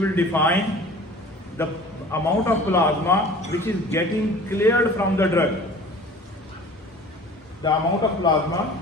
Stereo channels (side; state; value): both; normal; correlation 0.44